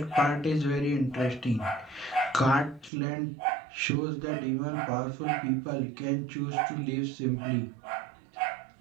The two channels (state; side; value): drops out; left; at 2.9 s